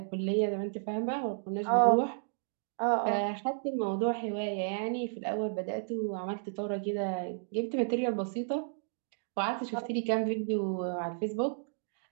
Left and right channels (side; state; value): left; silent; digital silence